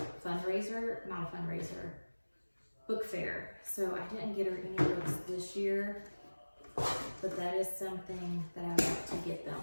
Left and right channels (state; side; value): inverted; both; correlation -1.00